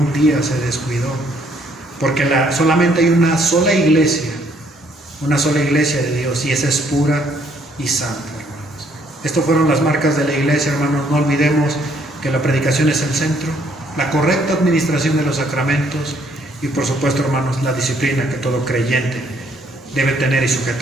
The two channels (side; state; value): both; normal; correlation 0.66